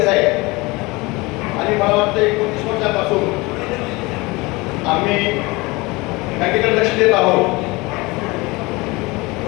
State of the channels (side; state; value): right; quieter; 23.6 dB